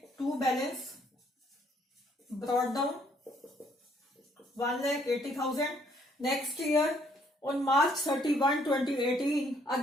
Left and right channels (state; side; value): normal; both; correlation 0.66